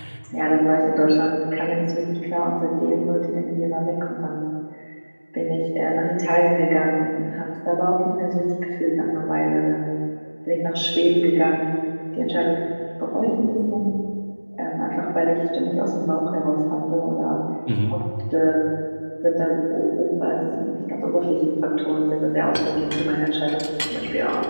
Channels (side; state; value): both; inverted; correlation -1.00